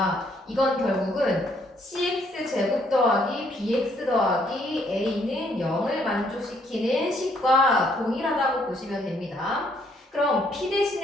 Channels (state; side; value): normal; both; correlation 0.68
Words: 이건 결국은 cx 제곱 더하기 bx 더하기 a는 0을 만족시키는 식과 동일하다고 보시면 됩니다. 그럼 p